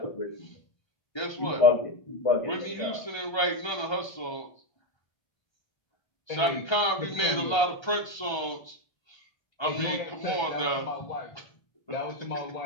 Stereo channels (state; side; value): late; right; 1.3 ms